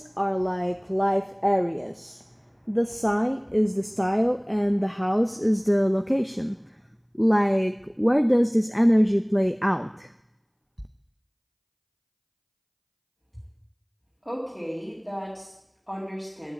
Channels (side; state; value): both; identical; correlation 1.00